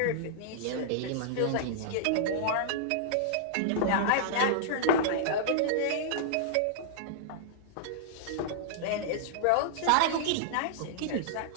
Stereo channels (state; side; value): different; both; correlation -0.01